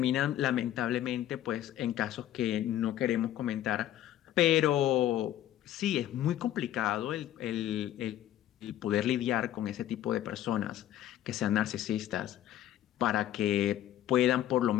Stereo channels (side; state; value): right; quieter; 12.5 dB